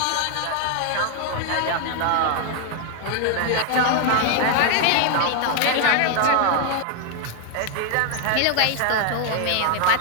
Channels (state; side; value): different; both; correlation 0.00